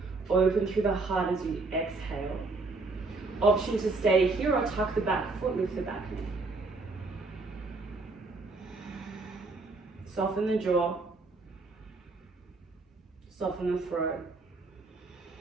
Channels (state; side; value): quieter; left; 3.6 dB